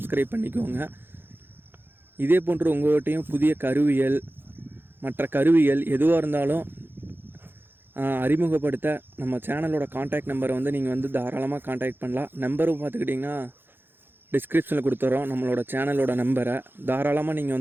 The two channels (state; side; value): late; left; 0.10 ms